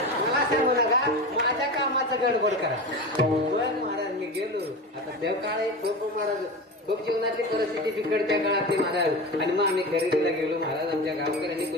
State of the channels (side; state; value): both; normal; correlation 0.27